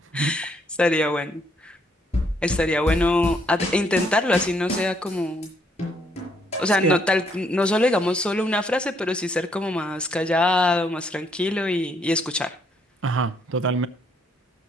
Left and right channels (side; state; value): both; normal; correlation 0.70